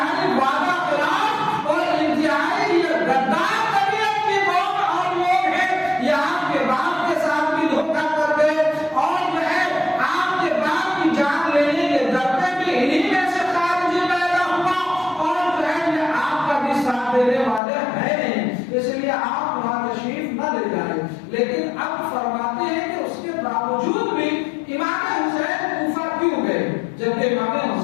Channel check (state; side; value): drops out; right; at 17.6 s